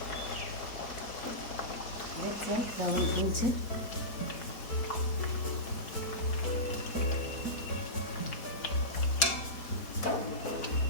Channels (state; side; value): late; right; 4.5 ms